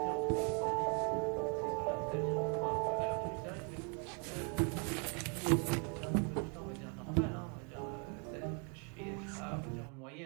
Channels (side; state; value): left; quieter; 36.3 dB